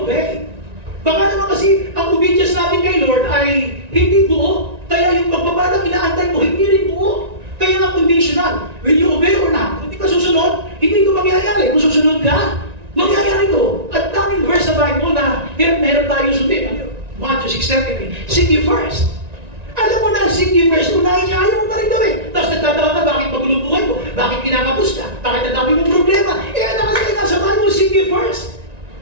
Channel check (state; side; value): late; left; 1.9 ms